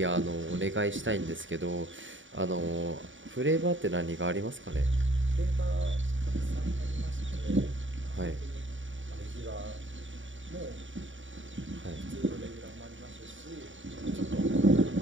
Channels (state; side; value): late; left; 0.56 ms